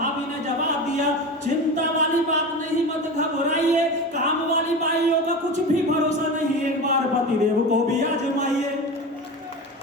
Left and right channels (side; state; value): both; normal; correlation 0.27